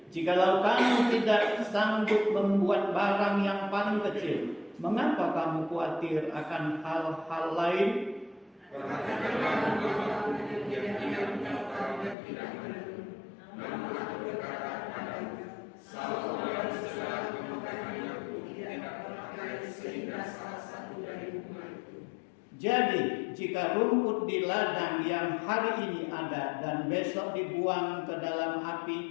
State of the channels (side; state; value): right; drops out; at 12.2 s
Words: jikalau kamu tidak sanggup membuat barang yang paling kecil, mengapa kamu khawatir akan hal-hal lain? Jadi, jika rumput di ladang yang hari ini ada dan besok dibuang ke dalam